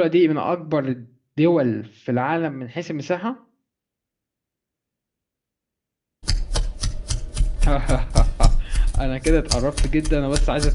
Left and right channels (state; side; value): identical; both; correlation 1.00